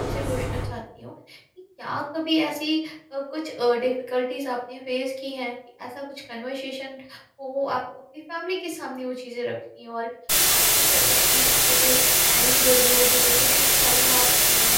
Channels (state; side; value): identical; both; correlation 1.00